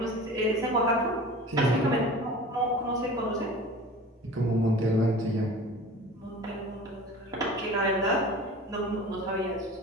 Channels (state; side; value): normal; both; correlation 0.39